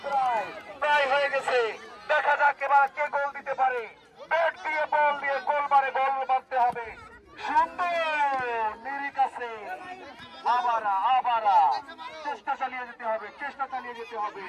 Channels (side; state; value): both; identical; correlation 1.00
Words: প্রায় হয়ে গেছে। দেখা যাক এবার কে গোল দিতে পারে। ব্যাট দিয়ে বল দিয়ে গোল মারে, বল মারতে হবে। সুন্দর, নিরিক আছে। আবারা আবারা চেষ্টা চালিয়ে যেতে হবে, চেষ্টা চালিয়ে যেতে হবে।